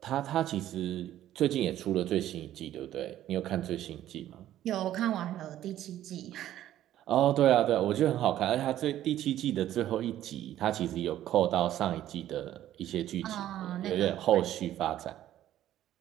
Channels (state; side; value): quieter; left; 12.6 dB